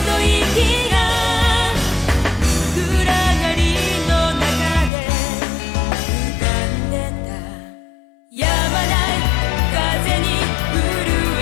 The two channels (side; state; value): right; drops out; at 4.9 s